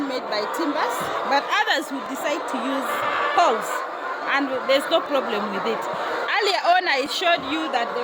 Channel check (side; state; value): both; identical; correlation 1.00